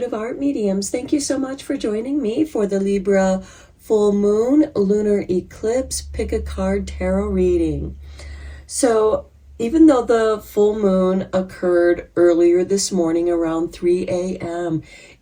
Art Mediums. Thank you so much for joining me for the Libra Full Moon Lunar Eclipse Pick a Card Tarot reading. So, even though the full moon occurred earlier this morning around 3 a.m.,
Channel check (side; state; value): both; identical; correlation 1.00